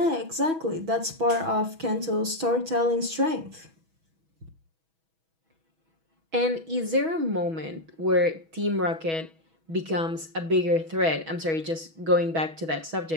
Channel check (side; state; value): left; late; 6.2 ms